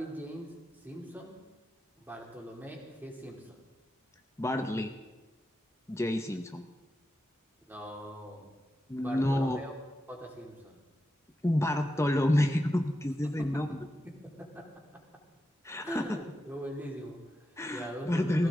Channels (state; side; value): normal; both; correlation 0.89